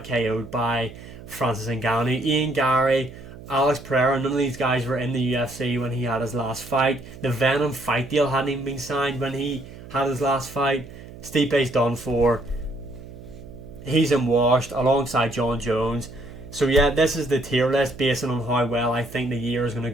KO'd by Francis Ngannou. Ian Gary, Alex Pereira, none of these guys were in the UFC when he had his last fight. The Venom fight deal hadn't even been signed when he had his last fight. Stipe's done for. He's in washed alongside John Jones. So yeah, this is the tier list based on how well I think the year is going to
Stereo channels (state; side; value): noise; right; hum, 16 dB below the sound